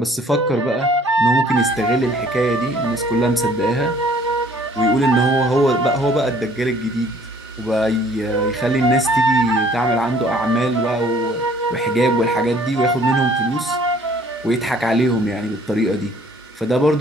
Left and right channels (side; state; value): both; normal; correlation 0.56